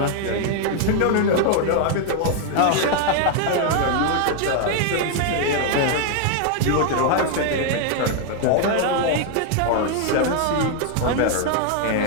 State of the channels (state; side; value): different; both; correlation 0.00